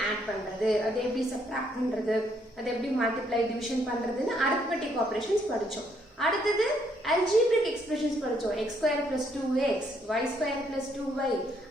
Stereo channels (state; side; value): normal; both; correlation 0.71